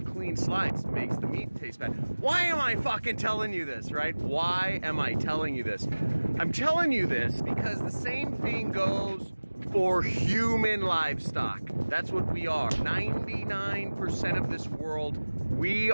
clean slice, it makes the meat taste bad. Why am I fucking telling you this, right? Why am I telling you this? I'm telling you this because the same thing goes for human livestock. That's what we are. 99% of this world, we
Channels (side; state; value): both; inverted; correlation -1.00